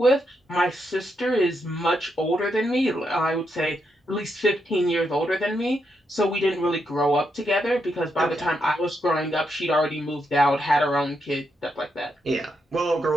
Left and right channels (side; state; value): both; normal; correlation 0.81